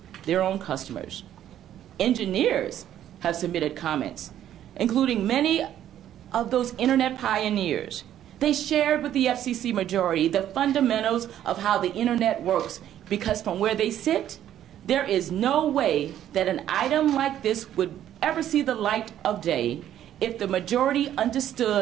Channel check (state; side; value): quieter; left; 11.3 dB